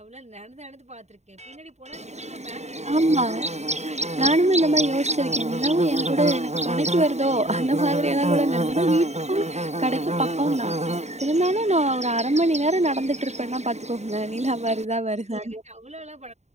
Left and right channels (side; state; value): left; late; 0.32 ms